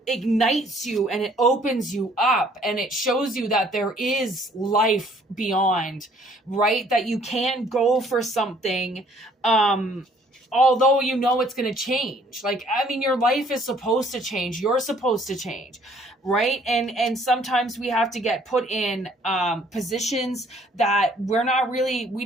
ignites you and it opens you up and it shows you that there is life beyond, right? That you can go for something, although it's going to change. Like, I mean, your life is supposed to change. You're supposed to change, right? And sometimes we have to get put in positions that we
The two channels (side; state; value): both; normal; correlation 0.60